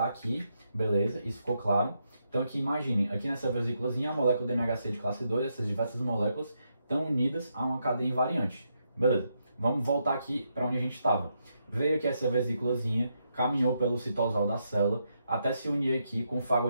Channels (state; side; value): inverted; both; correlation -0.80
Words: aqui, beleza, isso ficou claro. Então, aqui imaginem, aqui nessa vesículazinha, a molécula do MHC de classe 2, essas diversas moléculas estão unidas a uma cadeia invariante. Beleza, vamos voltar aqui para onde a gente estava. Veio aqui essa vesículazinha, caminhou pelo citosol da célula, até se unir aqui com o